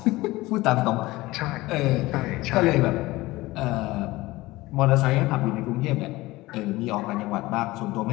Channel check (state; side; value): quieter; right; 19.4 dB